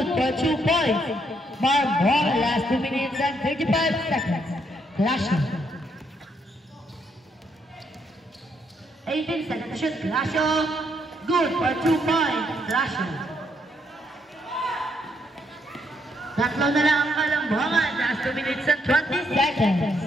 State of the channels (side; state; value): both; normal; correlation 0.74